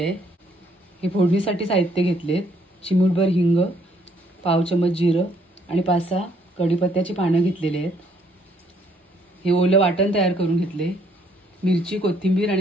आहे। हे फोडणीसाठी साहित्य घेतलेत। चिमूटभर हिंग, पाव चम्मच जिरं आणि 5-6 कढीपत्त्याची पानं घेतलेली आहेत। हे ओलं वाटण तयार करून घेतले। मिरची, कोथिंबीर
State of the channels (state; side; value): normal; both; correlation 0.67